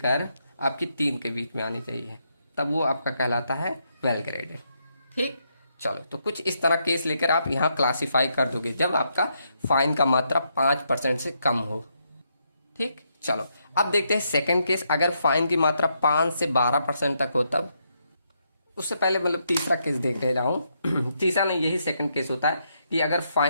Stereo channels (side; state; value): both; inverted; correlation -0.78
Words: आपकी 3 के बीच में आनी चाहिए, तब वो आपका कहलाता है वेल ग्रेडेड, ठीक। चलो तो कुछ इस तरह केस लेकर आप यहाँ क्लासिफाई कर दोगे जब आपका फाइन का मात्रा 5% से कम हो, ठीक। चलो अब देखते हैं सेकंड केस, अगर फाइन की मात्रा 5 से 12% तक हो तब। उससे पहले मतलब तीसरा केस देख रहा हूँ तीसरा नहीं, यही सेकंड केस होता है कि अगर